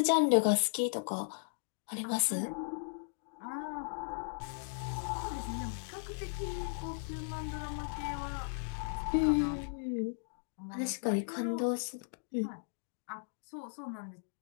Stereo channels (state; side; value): silent; right; digital silence